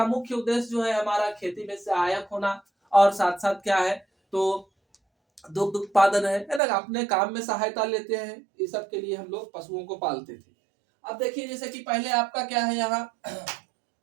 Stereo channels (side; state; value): left; drops out; at 6.6 s